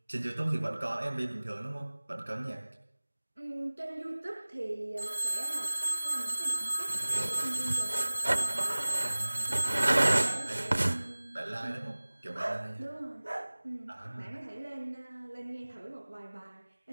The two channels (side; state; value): both; inverted; correlation -1.00